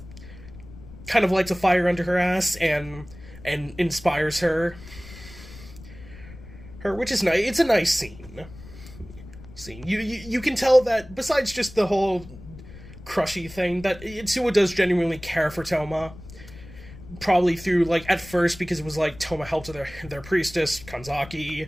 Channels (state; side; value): noise; left; rumble, 17 dB below the sound